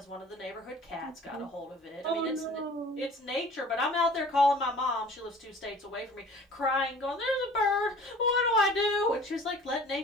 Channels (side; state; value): both; normal; correlation 0.47